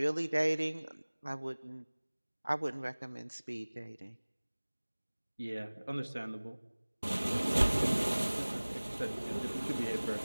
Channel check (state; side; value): inverted; both; correlation -1.00